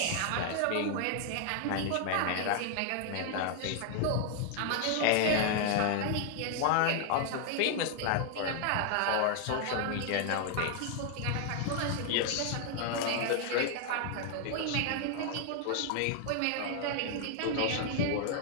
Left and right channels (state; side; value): different; both; correlation 0.00